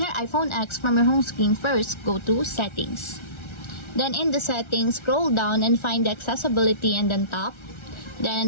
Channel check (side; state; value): right; late; 1.3 ms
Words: your iPhone X from your home screen, first go to Settings. Then in the Settings, scroll down and find the Accessibility and then tap. Then in